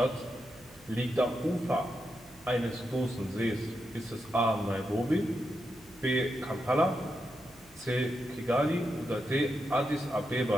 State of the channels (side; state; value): right; noise; hum, 26 dB below the sound